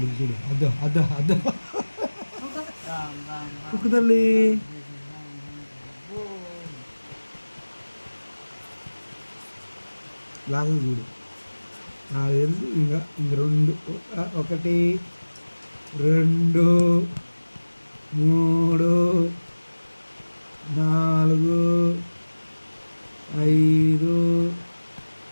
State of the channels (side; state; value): both; inverted; correlation -1.00